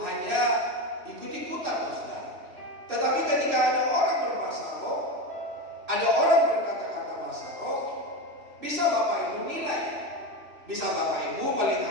hanya ikut-ikutan Bapak Saudara. Tetapi ketika ada orang berbahasa roh, ada orang berkata-kata bahasa roh, bisa Bapak Ibu nilai, bisa Bapak Ibu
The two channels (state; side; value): late; left; 2.6 ms